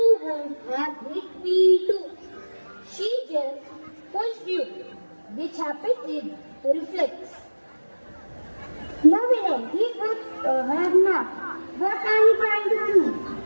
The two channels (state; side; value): inverted; both; correlation -1.00